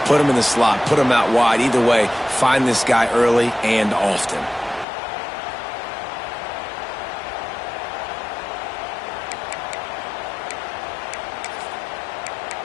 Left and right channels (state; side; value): drops out; right; at 4.9 s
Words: Put him in the slot, put him out wide. Either way, find this guy early and often.